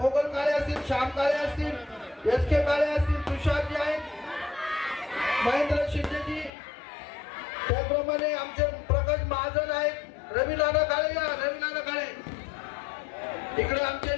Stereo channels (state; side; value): drops out; right; at 6.5 s